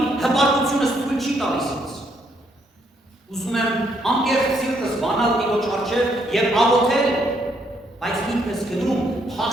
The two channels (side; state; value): both; normal; correlation 0.72